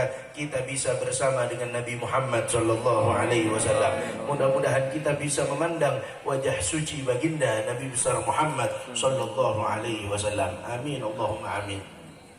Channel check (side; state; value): both; identical; correlation 1.00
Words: kita bisa bersama dengan Nabi Muhammad sallallahu alaihi wasallam. Mudah-mudahan kita bisa memandang wajah suci baginda Nabi besar Muhammad sallallahu alaihi wasallam. Amin Allahumma amin.